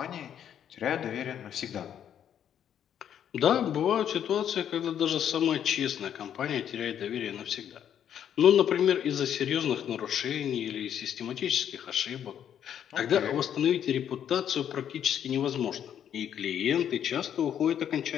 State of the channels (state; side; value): quieter; right; 9.5 dB